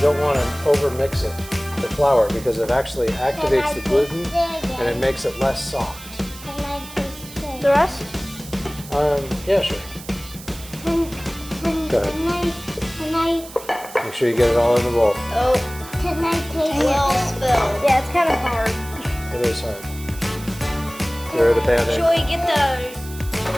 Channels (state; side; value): noise; right; hiss, 16 dB below the sound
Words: don't want to overmix it, the flour, because it actually activates the gluten and it makes it less soft. Can I taste it? The rest? Yeah, sure. Go ahead. Can I Make sure you get it all in the bowl. Oh, Can I taste well it? spilled. Yeah, it's kind of hard. It is hard. Throw the pan in. Should we get the